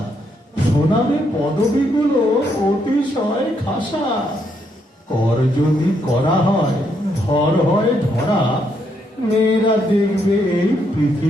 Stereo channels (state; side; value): normal; both; correlation 0.76